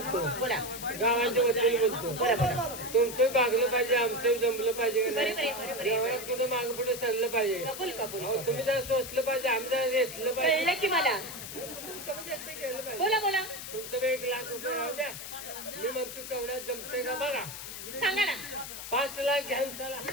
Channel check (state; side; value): noise; left; hiss, 9 dB below the sound